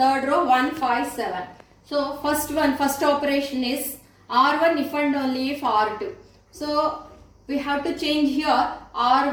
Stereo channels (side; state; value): both; identical; correlation 1.00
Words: row 1, 5, 7. So first operation is R1 if and only if R2. So we have to change here.